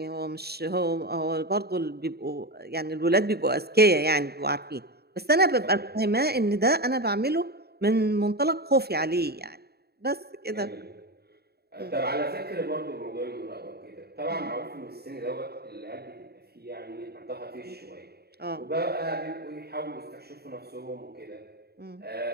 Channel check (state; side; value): late; left; 0.47 ms